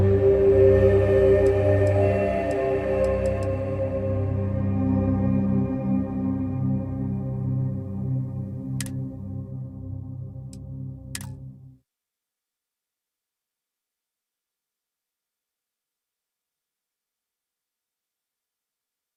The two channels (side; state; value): both; identical; correlation 1.00